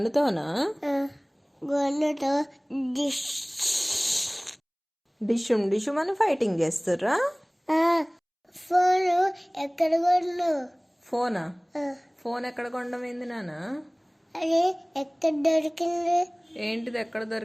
గన్నుతో డిషుమ్ అని ఫైటింగ్ చేస్తుర్రా? ఫోన్ ఎక్కడ కొను? ఫోన్ ఎక్కడ కొండమైంది నాన్న? అది ఎక్కడ దొరికింది? ఏంటిది ఎక్కడ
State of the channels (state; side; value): identical; both; correlation 1.00